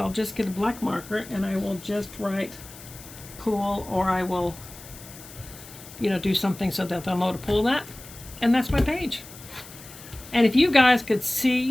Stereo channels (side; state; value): left; noise; hiss, 17 dB below the sound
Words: just get a black marker and I will just write pull, or I will, do something so that they'll know to pull that, and that's my page. And if you guys could